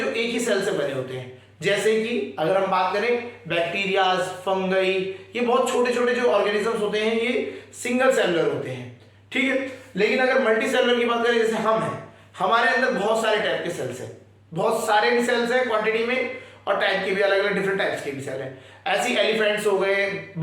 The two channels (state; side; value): identical; both; correlation 1.00